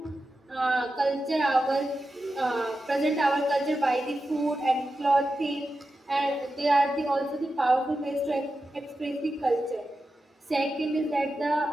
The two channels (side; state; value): both; normal; correlation 0.91